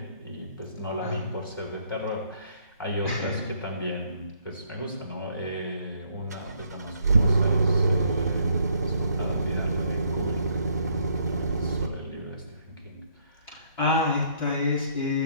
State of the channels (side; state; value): both; inverted; correlation -0.67